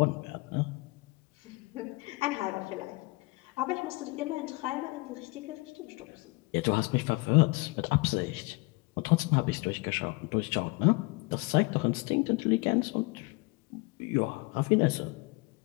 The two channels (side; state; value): right; quieter; 25.4 dB